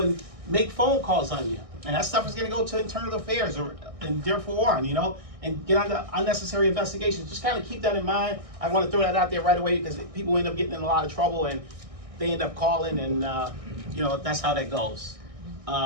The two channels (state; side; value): late; left; 1.6 ms